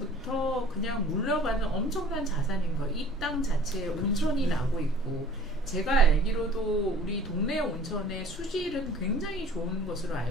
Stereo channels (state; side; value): normal; both; correlation 0.49